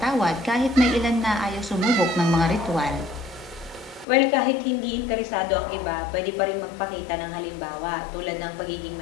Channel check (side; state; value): right; drops out; at 4.0 s